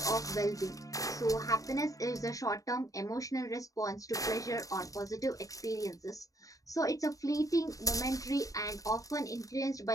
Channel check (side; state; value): right; late; 0.16 ms